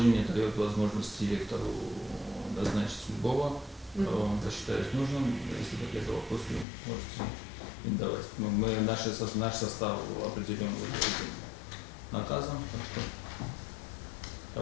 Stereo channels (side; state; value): right; drops out; at 6.7 s